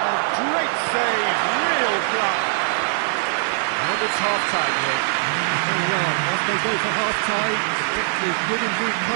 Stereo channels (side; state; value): left; silent; digital silence